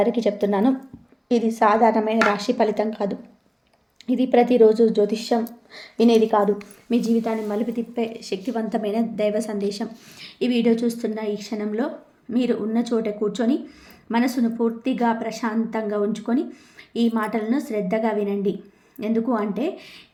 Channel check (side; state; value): both; identical; correlation 1.00